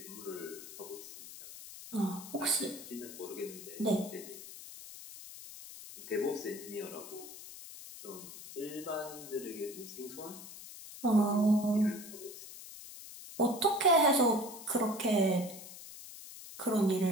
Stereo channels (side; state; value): left; noise; hiss, 14 dB below the sound